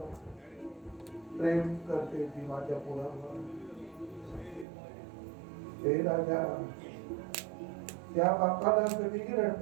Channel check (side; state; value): left; drops out; at 4.7 s